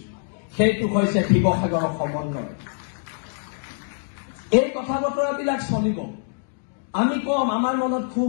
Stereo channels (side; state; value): right; silent; digital silence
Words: সেইটো হৈছে শিৱসাগৰৰ সমন্বয়। এই কথা বতৰাবিলাক চলিব। আমি কম, আমাৰ মনত